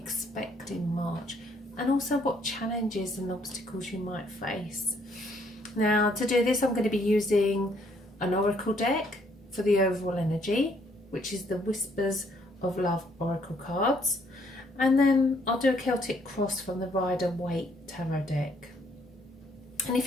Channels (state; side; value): normal; both; correlation 0.67